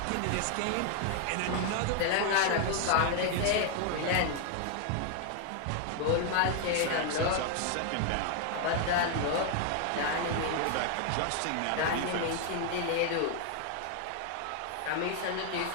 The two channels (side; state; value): both; different; correlation 0.00